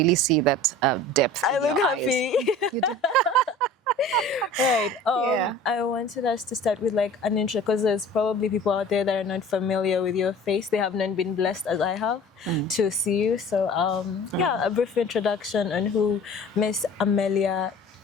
see that depth. I look happy. You do. Right. I wanted us to start with like an intro, because there's probably people out there that are not familiar with your face. They have not been blessed as I have to see you. So yeah, a brief introduction on who Miss Amelia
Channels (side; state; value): both; normal; correlation 0.43